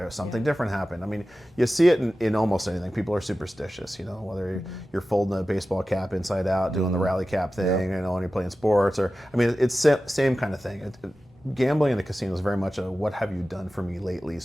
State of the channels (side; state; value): both; normal; correlation 0.94